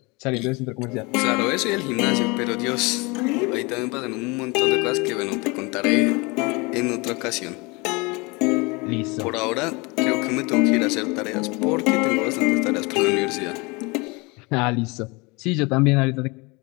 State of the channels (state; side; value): quieter; right; 26.9 dB